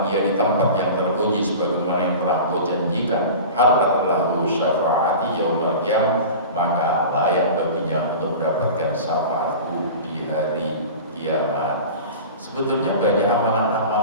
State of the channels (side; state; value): both; inverted; correlation -0.35